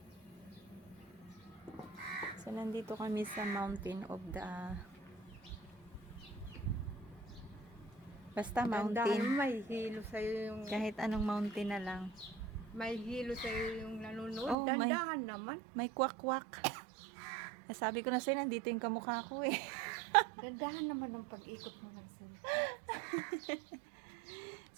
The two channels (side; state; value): left; drops out; at 14.6 s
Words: So, nandito kami sa mountain of the... Basta Dandahan, mountain. may hilo sa'yo yung... Kahit anong mountain na lang. May hilo sa'yo yung nanonood. Oh, Dandahan naman. May kwak-kwak. Sabi ko na sa'yo, nandito yung kamukha ko eh. Dandahan naman ang pag-ikot mo Marcel.